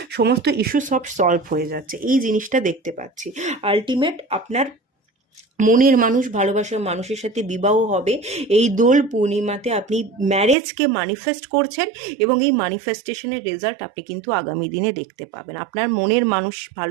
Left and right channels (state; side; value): drops out; left; at 10.6 s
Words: সমস্ত ইস্যু সব সলভ হয়ে যাচ্ছে, এই জিনিসটা দেখতে পাচ্ছি। আলটিমেট আপনার মনের মানুষ, ভালোবাসার মানুষের সাথে বিবাহ হবে। এই দোল পূর্ণিমাতে আপনি ম্যারেজকে ম্যানিফেস্ট করছেন এবং এই ম্যানিফেস্টেশনের রেজাল্ট আপনি কিন্তু আগামী দিনে দেখতে পাবেন। আপনার মনের মানুষ,